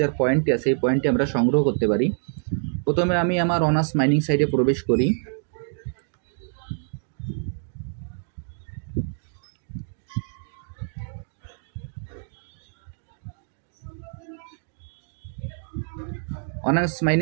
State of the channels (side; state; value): left; silent; digital silence